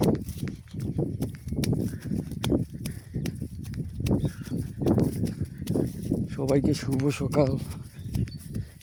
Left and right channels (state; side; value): identical; both; correlation 1.00